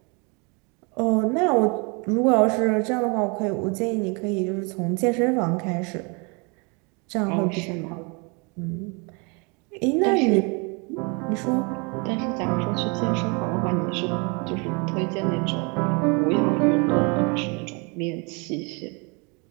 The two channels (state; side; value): quieter; left; 31.7 dB